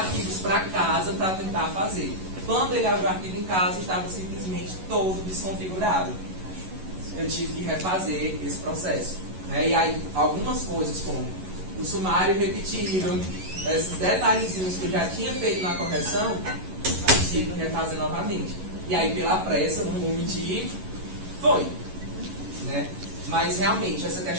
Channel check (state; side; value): late; left; 11 ms